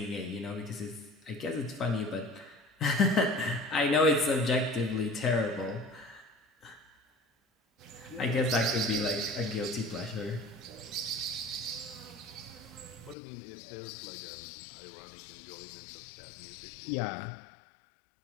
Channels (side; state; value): right; drops out; at 13.2 s